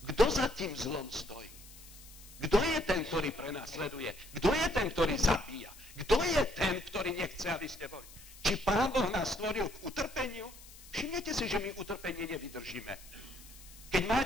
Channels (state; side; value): noise; left; hiss, 19 dB below the sound